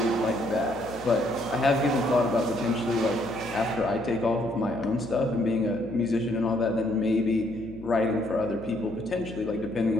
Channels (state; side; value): noise; left; hum, 17 dB below the sound